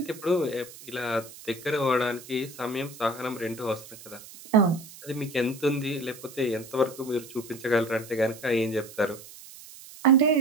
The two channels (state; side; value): noise; right; hiss, 17 dB below the sound